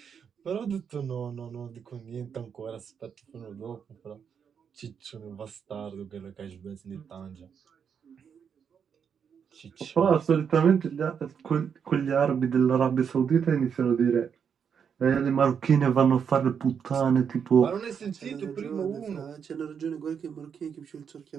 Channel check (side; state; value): left; quieter; 7.2 dB